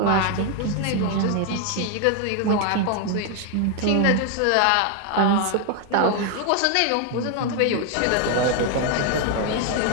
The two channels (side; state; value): both; different; correlation 0.01